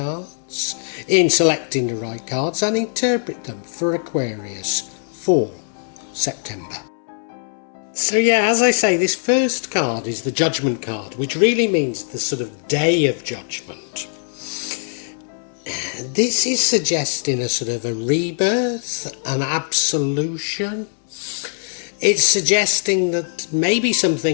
in selecting the right cards and interpret them for Aquarius for September. So yeah, as I say, this first card is the Judgement card, which really means the sort of day of judgment. This is suggesting a sort of a rebirth, an absolution. It's suggesting that maybe some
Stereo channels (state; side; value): silent; right; 65 dB below the other